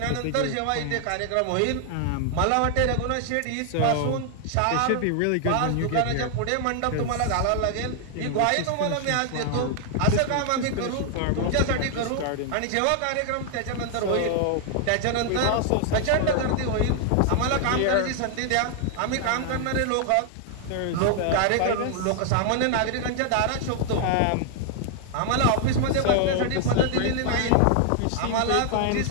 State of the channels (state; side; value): different; both; correlation 0.00